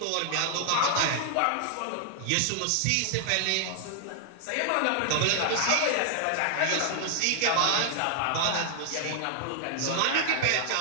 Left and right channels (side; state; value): both; different; correlation 0.00